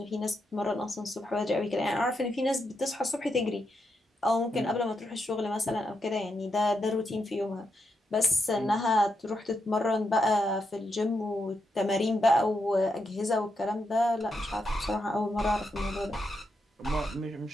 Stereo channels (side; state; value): both; normal; correlation 0.83